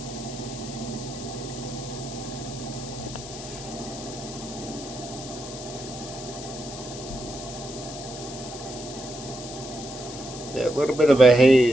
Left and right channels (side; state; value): left; noise; hiss, 12 dB below the sound